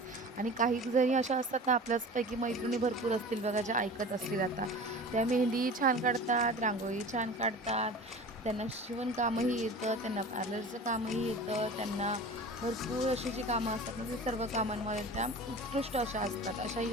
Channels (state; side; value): normal; both; correlation 0.37